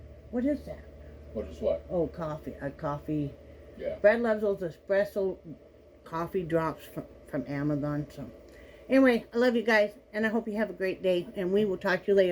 What is that? What is what? Oh, coffee. A coffee. Yeah. Brad loves those espresso coffee drops from Amazon. So anyway, I love you guys, and I hope you have a great day, and we will talk to you later.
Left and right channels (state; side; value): identical; both; correlation 1.00